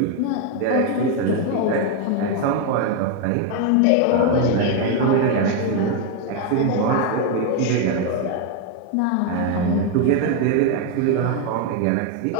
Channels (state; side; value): different; both; correlation 0.01